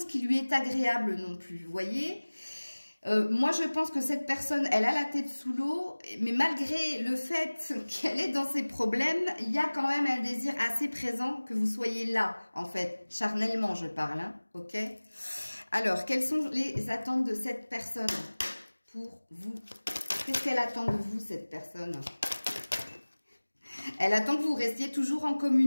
qui lui est agréable non plus, vous voyez ? Moi, je pense que cette personne, elle a la tête sous l'eau, mais malgré le fait qu'elle est dans ses problèmes, il y a quand même un désir assez présent que vous soyez là, en fait, charnellement, je parle, hein, ok? Alors, quelles sont les attentes de cette personne pour vous? Qu'est-ce qu'elle attend de vous, cette personne? Elle attend que vous restiez toujours en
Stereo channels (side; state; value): both; inverted; correlation -1.00